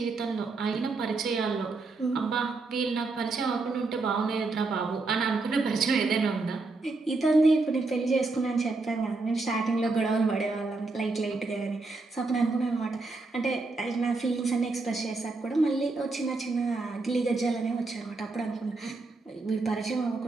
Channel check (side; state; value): left; quieter; 3.6 dB